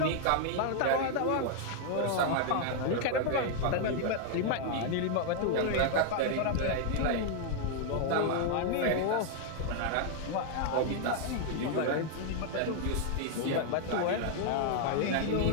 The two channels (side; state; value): both; different; correlation 0.00